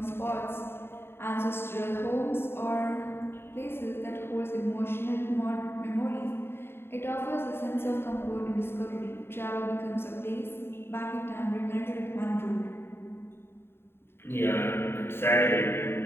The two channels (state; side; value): late; right; 0.11 ms